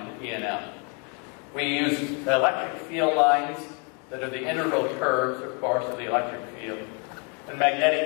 in E&M. We use electric field lines that are the integral curves, of course, of the electric field, and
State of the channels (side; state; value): right; quieter; 35.7 dB